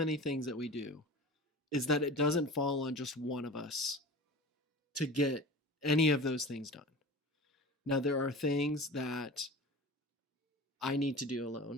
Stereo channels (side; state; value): both; normal; correlation 0.36